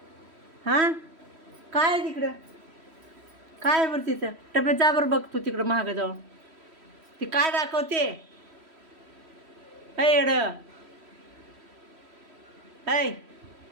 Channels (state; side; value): late; left; 3.1 ms